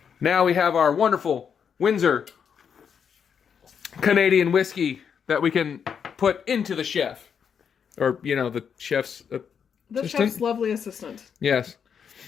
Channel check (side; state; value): right; quieter; 7.2 dB